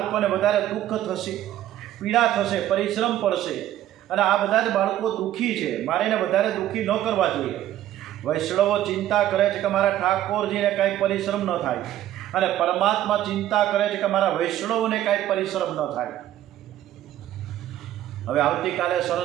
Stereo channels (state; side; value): quieter; left; 12.8 dB